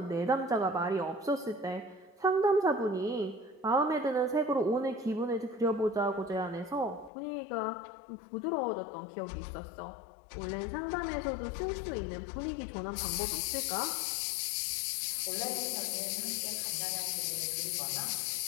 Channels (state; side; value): drops out; right; at 7.1 s